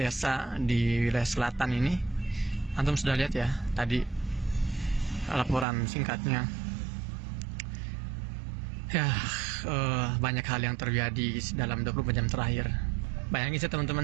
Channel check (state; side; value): drops out; left; at 5.7 s